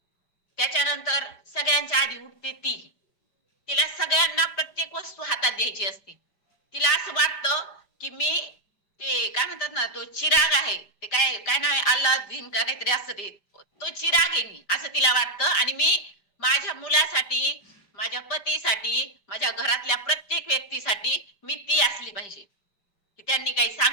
त्याच्यानंतर सगळ्यांच्या आधी उठते ती. तिला सगळ्यांना प्रत्येक वस्तू हातात द्यायची असते. तिला असं वाटतं की मी ते काय म्हणतात ना, तो चिराग आहे, ते काय काय नाव आहे, अल्लादीन का काहीतरी असतं ते, तो चिराग आहे मी, असं तिला वाटतं. आणि मी माझ्या मुलासाठी, माझ्या पतीसाठी, माझ्या घरातल्या प्रत्येक व्यक्तीसाठी मी ती असली पाहिजे. की त्यांनी काही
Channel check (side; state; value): right; late; 5.0 ms